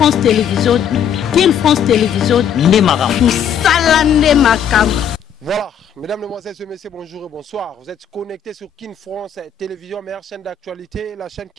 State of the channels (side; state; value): right; quieter; 8.3 dB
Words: Télévision, King France Télévision, Nemaram. Salande Makam. Voilà, mesdames, mesdemoiselles et messieurs, bonjour et bonsoir. Vous êtes connectés sur King France Télévision, meilleure chaîne d'actualité, la chaîne